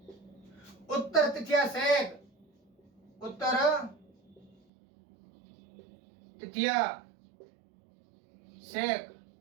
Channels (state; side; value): drops out; left; at 4.5 s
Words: उत्तर तिथिया शेक, उत्तर तिथिया शेक।